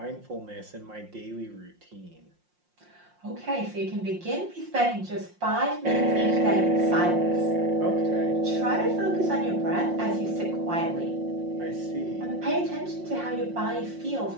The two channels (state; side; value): late; left; 5.6 ms